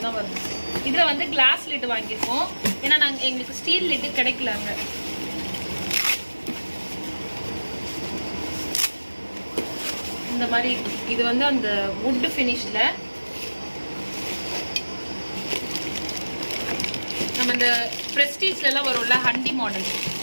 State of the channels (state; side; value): inverted; both; correlation -1.00